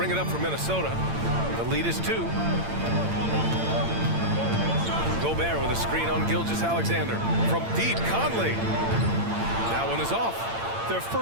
it up for Minnesota. The lead is 2. Gobert with a screen on Gilgeous-Alexander. From deep, Conley. That one is off. Their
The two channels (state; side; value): late; left; 8.8 ms